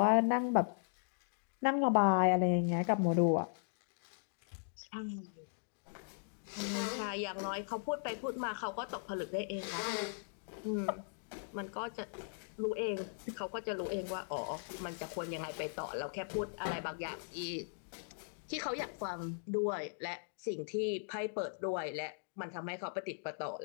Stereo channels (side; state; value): right; silent; digital silence